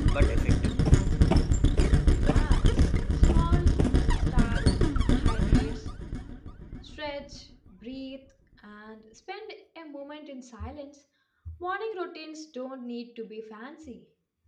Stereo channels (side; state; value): both; identical; correlation 1.00